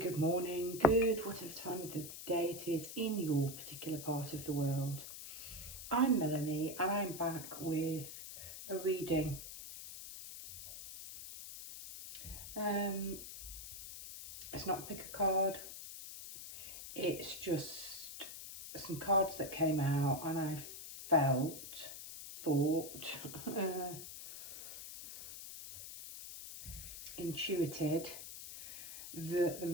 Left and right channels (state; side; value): noise; left; hiss, 10 dB below the sound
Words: morning, good whatever time of the day it is in your particular part of the world. I'm Melanie and I'm back with a reading. It's not a pick a card, it's just some cards that came out and I thought, intuited that the